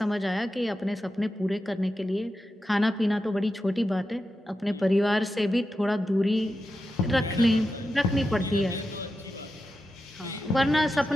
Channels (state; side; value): normal; both; correlation 0.90